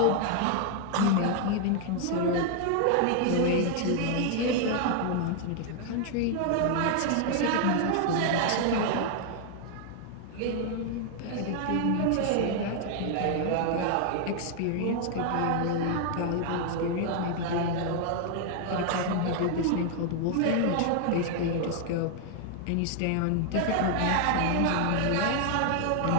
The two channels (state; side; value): different; both; correlation 0.00